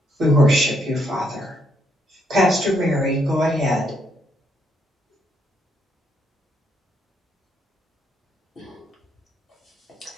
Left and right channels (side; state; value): both; normal; correlation 0.74